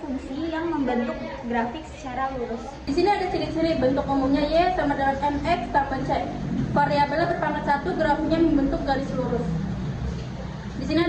yang membentuk grafik secara lurus. Di sini ada ciri-ciri bentuk umumnya Y sama dengan MX tambah C. Variabelnya berpangkat 1, grafiknya membentuk garis lurus. Di sini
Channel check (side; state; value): both; identical; correlation 1.00